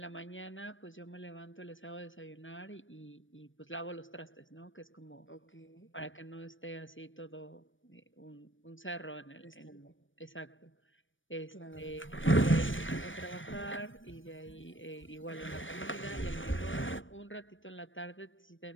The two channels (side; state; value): right; late; 0.56 ms